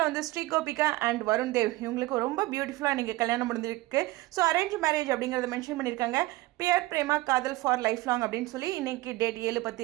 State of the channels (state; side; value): quieter; left; 19.1 dB